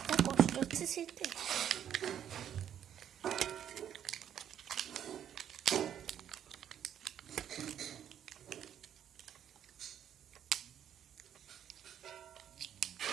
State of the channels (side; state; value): left; quieter; 9.8 dB